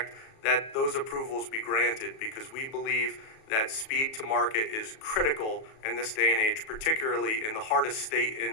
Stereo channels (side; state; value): right; late; 37 ms